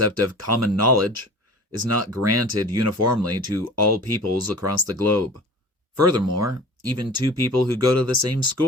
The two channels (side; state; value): both; normal; correlation 0.41